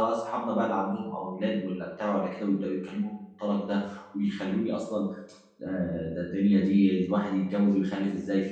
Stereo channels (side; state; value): both; identical; correlation 1.00